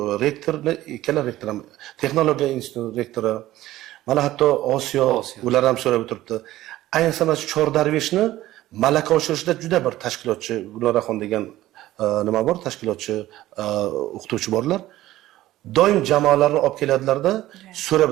rektorni, ikkala rektor ham, texnologiya instituti rektori, mana hatto Osiyo ular ham so'rab o'tiribdi. Ayniqsa mana Chordarveshni malaka oshirishda juda bir tashkilotchi Guloraxon degan nima bor, tashkilotchi o'qituvchi borlar. Doim jamoalarni olib keladilarda, so'rab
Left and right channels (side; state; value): left; quieter; 15.3 dB